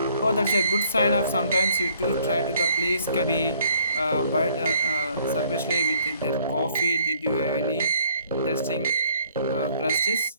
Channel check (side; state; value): both; inverted; correlation -0.62